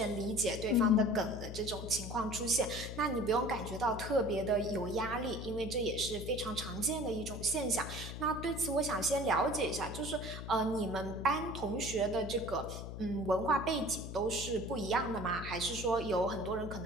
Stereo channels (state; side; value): noise; left; hum, 8 dB below the sound